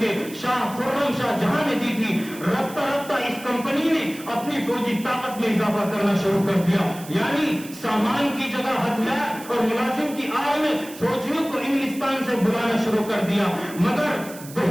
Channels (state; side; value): noise; right; hiss, 16 dB below the sound